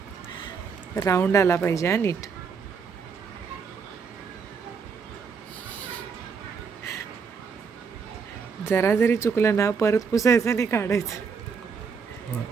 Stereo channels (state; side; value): quieter; left; 5.8 dB